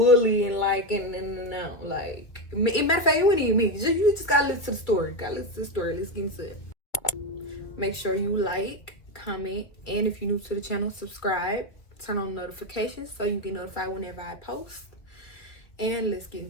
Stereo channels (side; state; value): right; late; 2.2 ms